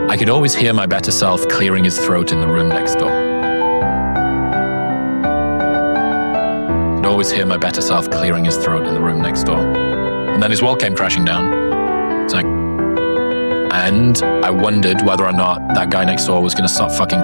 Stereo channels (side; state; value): both; inverted; correlation -1.00